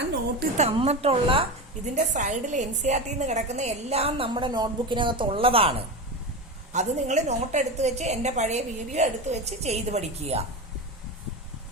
നോട്ടിൽ തന്നിട്ടുള്ള ഇതിന്റെ സൈഡിൽ NCERT കിടക്കുന്ന എല്ലാം നമ്മുടെ നോട്ട്ബുക്കിനകത്തുള്ളതാണ്. അത് നിങ്ങൾ നോട്ട് എടുത്ത് വെച്ച് എൻ്റെ പഴയ വീഡിയോ എടുത്ത് വെച്ച് ചെയ്ത് പഠിക്കുക.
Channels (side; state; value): both; normal; correlation 0.21